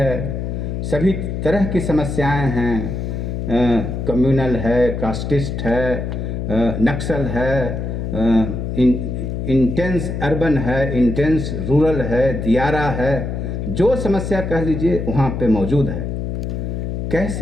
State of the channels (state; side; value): noise; left; hum, 3 dB below the sound